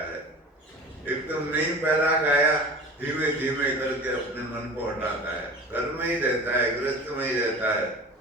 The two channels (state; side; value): normal; both; correlation 0.38